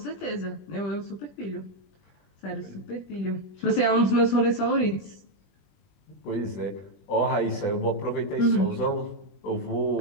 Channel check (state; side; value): late; right; 21 ms